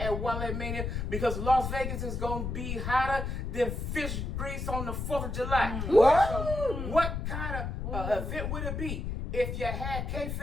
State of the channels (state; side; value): noise; left; rumble, 3 dB below the sound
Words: Wale Mania because Las Vegas is going to be hotter than fish grease on the 4th of July. What? So what kind of event would it be if you had